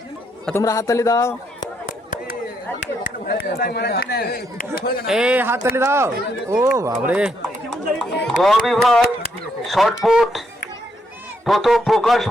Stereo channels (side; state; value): both; normal; correlation 0.75